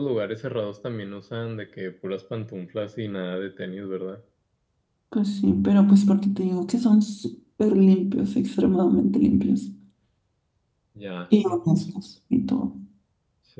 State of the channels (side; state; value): both; identical; correlation 1.00